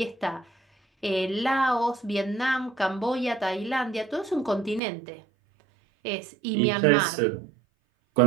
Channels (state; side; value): drops out; left; at 4.8 s